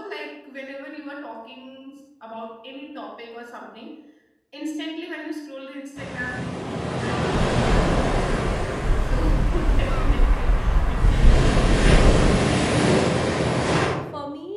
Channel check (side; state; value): both; identical; correlation 1.00